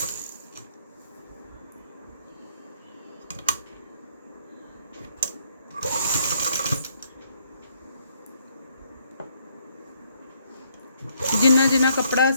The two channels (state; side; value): inverted; both; correlation -0.69